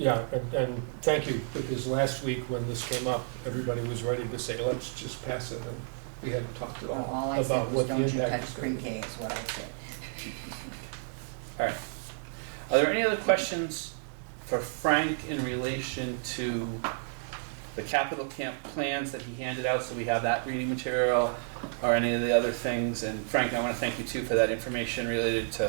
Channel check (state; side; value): silent; left; digital silence